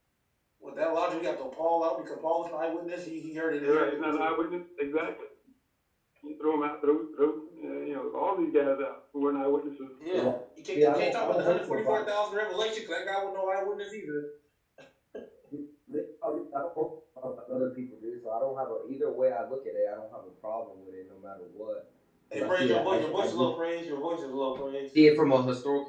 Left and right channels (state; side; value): identical; both; correlation 1.00